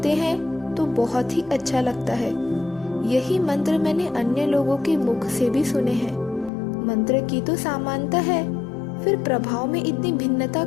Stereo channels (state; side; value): drops out; right; at 6.5 s